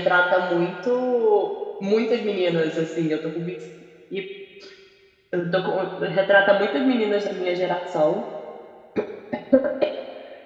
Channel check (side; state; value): both; identical; correlation 1.00